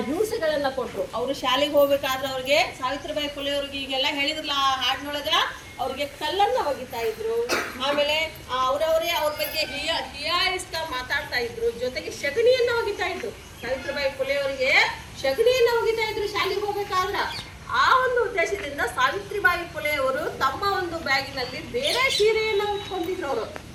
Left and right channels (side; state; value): both; identical; correlation 1.00